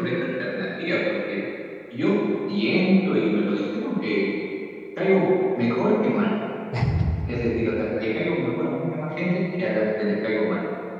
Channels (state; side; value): identical; both; correlation 1.00